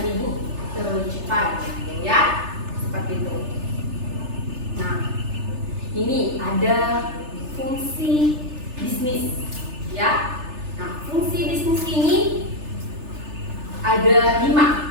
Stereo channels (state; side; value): late; left; 3.3 ms